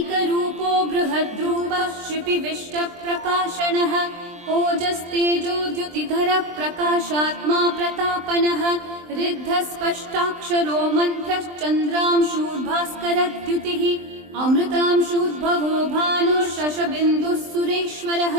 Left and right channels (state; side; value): late; left; 23 ms